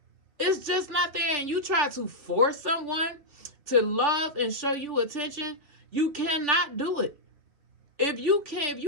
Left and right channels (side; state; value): left; late; 3.3 ms